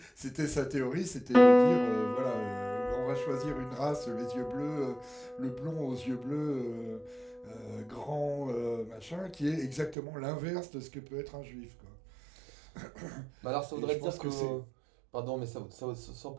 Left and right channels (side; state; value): left; drops out; at 10.0 s